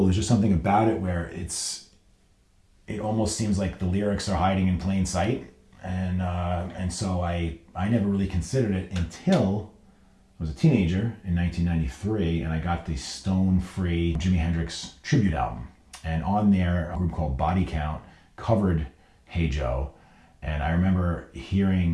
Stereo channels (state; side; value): identical; both; correlation 1.00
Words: there's just something about it where it almost seems like the lyrics are hiding in plain sight, and so I never really considered it until I was a teenager in 1993, and I got the Stone-Free Jimi Hendrix tribute album, and on there a group called Body Count covered Hey Joe, and I remember